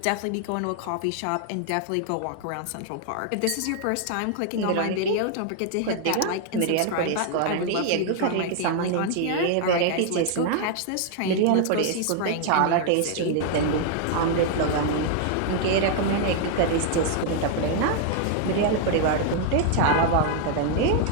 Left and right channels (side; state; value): both; different; correlation 0.00